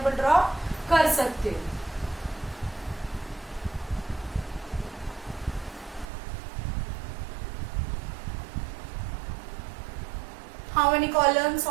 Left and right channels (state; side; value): drops out; left; at 6.1 s